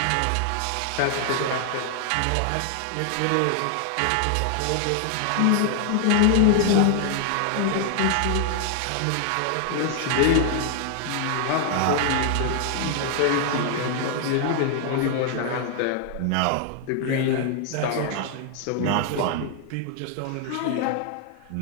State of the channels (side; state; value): both; different; correlation 0.00